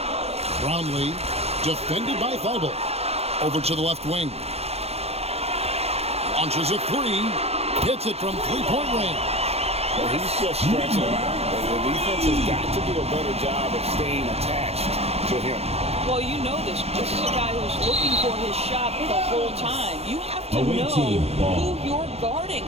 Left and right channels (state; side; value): late; left; 0.30 ms